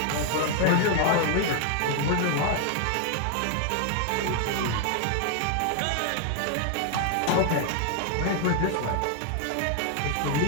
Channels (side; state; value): both; different; correlation 0.00